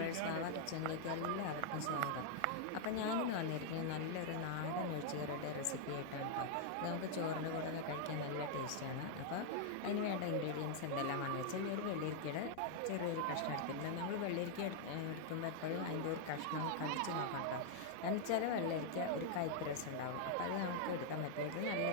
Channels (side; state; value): both; different; correlation -0.01